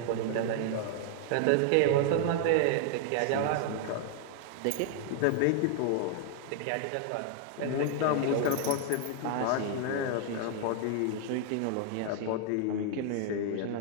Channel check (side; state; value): both; different; correlation 0.00